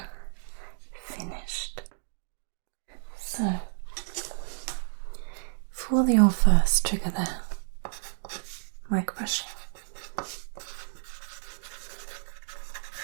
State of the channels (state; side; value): silent; left; digital silence